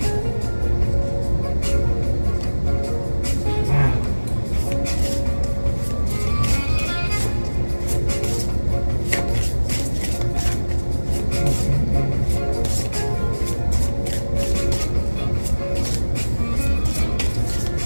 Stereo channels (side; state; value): both; inverted; correlation -1.00